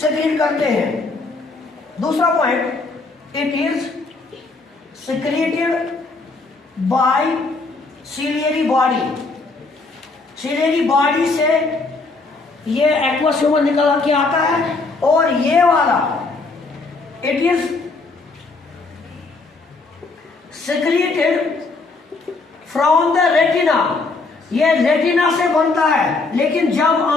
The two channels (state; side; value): quieter; right; 3.7 dB